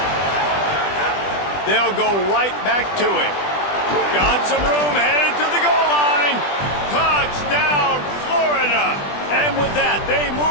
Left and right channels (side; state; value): right; late; 20 ms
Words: They'll go right back to him. Got some room, headed to the goal line. Touchdown, Florida. And with that, they